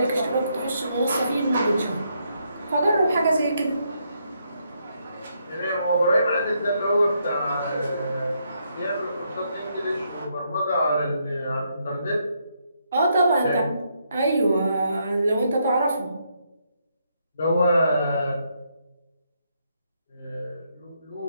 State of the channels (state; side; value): inverted; both; correlation -0.76